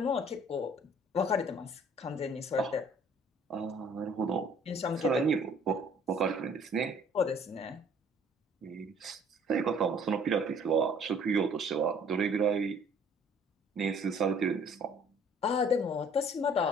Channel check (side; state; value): both; normal; correlation 0.56